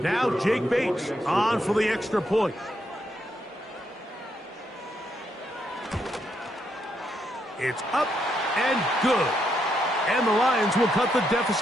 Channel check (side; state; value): both; normal; correlation 0.78